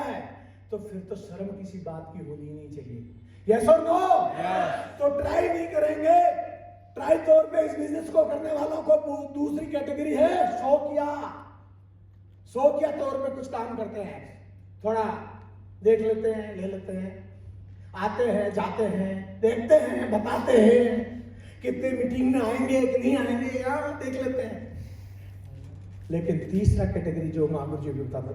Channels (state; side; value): identical; both; correlation 1.00